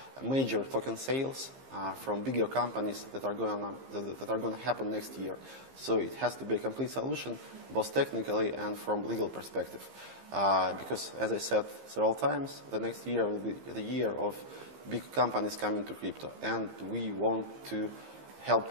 major token sales from bigger companies that are going to happen next year. So it has to be a complete solution, both technically and from legal perspective. Because, as I said several times, the next year will be the year of big companies coming to crypto, and we want to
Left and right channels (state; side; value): late; left; 15 ms